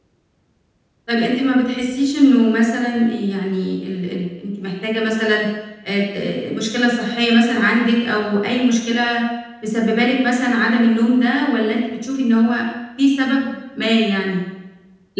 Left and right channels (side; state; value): both; identical; correlation 1.00